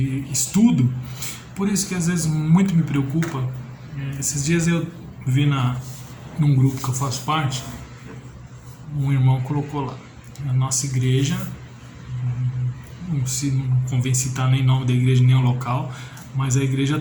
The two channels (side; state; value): both; identical; correlation 1.00